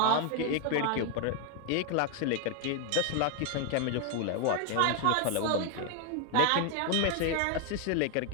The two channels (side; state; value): both; different; correlation 0.01